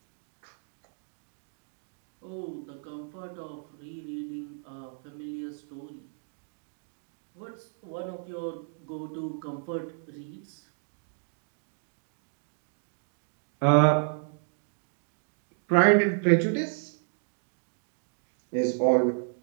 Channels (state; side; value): silent; left; digital silence